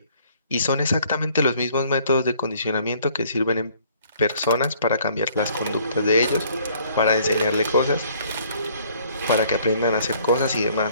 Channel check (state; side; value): inverted; both; correlation -0.60